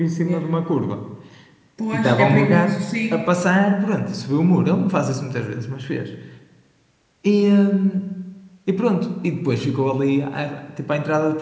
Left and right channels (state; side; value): identical; both; correlation 1.00